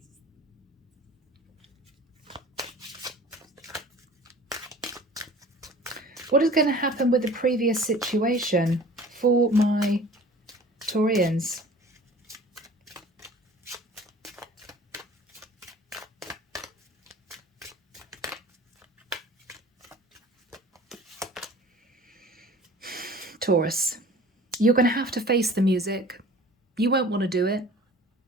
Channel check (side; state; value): both; normal; correlation 0.45